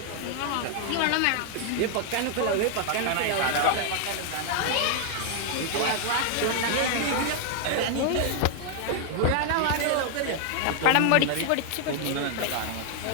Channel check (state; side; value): different; both; correlation 0.00